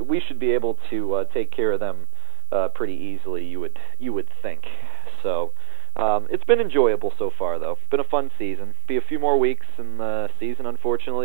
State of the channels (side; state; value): left; silent; digital silence